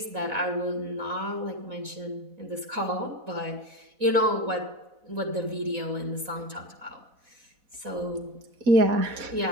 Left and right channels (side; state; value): left; late; 4.1 ms